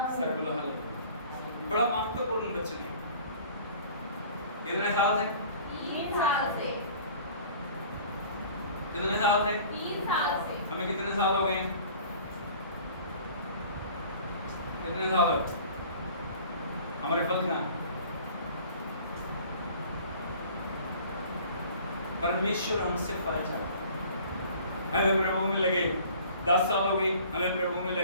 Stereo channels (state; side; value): inverted; both; correlation -0.48